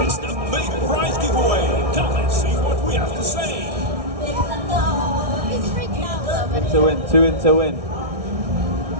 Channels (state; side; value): late; left; 1.6 ms